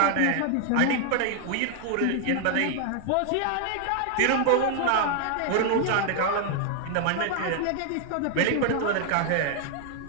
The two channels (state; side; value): different; both; correlation 0.00